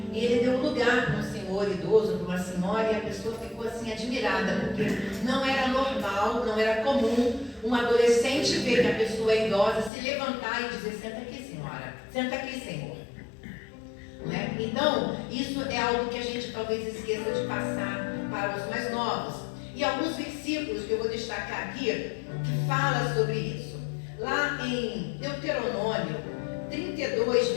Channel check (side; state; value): right; drops out; at 9.9 s